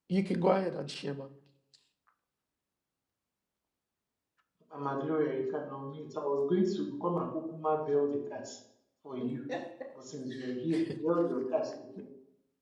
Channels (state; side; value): identical; both; correlation 1.00